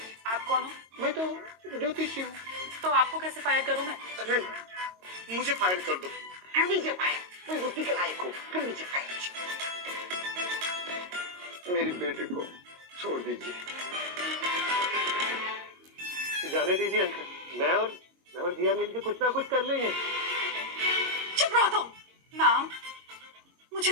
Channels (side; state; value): left; late; 22 ms